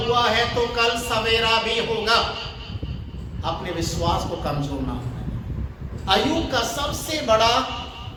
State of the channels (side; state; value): both; identical; correlation 1.00